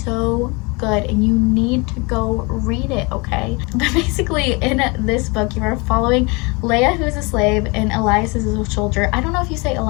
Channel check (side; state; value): right; quieter; 28.0 dB